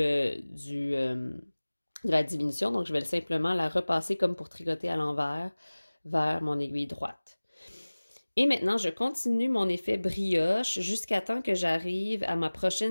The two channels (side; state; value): both; inverted; correlation -1.00